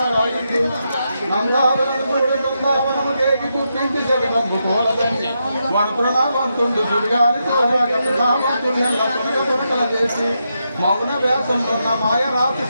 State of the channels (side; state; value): both; inverted; correlation -0.84